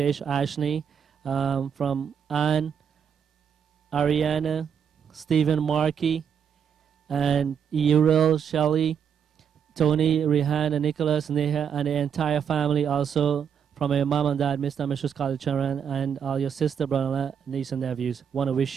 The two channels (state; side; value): quieter; left; 7.7 dB